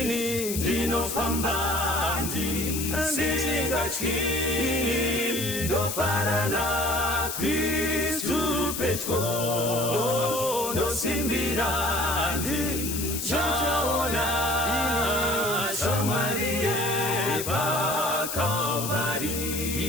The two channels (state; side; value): noise; left; hiss, 4 dB below the sound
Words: Ndinofamba ndisingachiki ndofarana Kristu petro nosimbira ndichaona shamwaliye pa Kalvari.